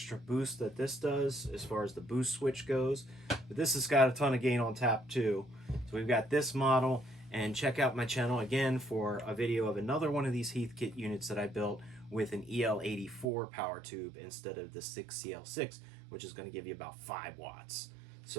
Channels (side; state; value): left; drops out; at 13.2 s